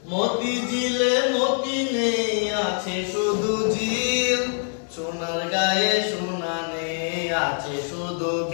মতি ঝিলে মতি নেই, আছে শুধু ঝিল। সোনার গায়ে সোনা নেই, আছে শুধু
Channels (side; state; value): right; silent; digital silence